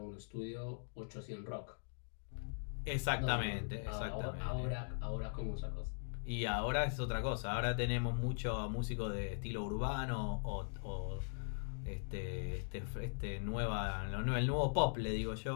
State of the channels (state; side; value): silent; right; digital silence